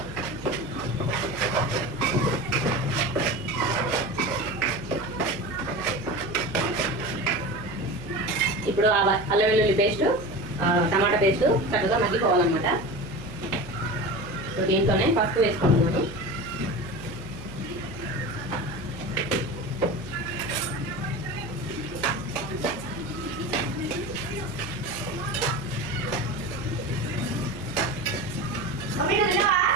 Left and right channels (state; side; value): noise; right; hum, 16 dB below the sound